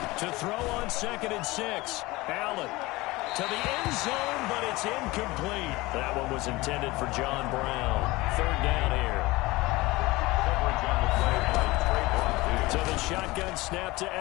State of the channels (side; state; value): right; quieter; 21.0 dB